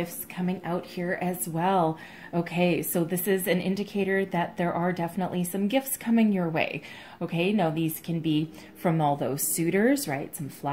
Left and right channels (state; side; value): identical; both; correlation 1.00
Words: coming out here as well. Okay, so this is an indicator that there are definitely some gifts coming your way. Okay, now these can be from all those suitors, right? Some